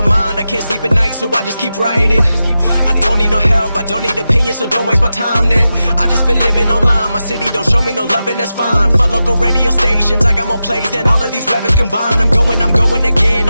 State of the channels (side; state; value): both; inverted; correlation -0.91